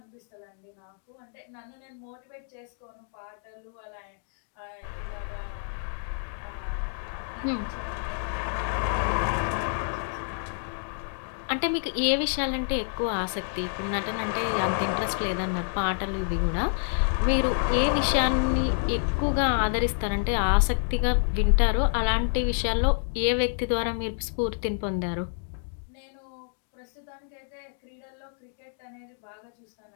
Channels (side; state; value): right; silent; digital silence